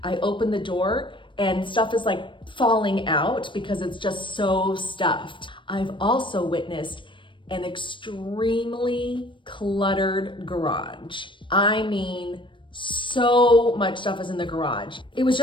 I open the door and stuff is like falling out because it's just so stuffed. I've also witnessed an extremely cluttered garage. I mean, so much stuff is in the garage. It was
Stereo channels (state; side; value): late; right; 0.24 ms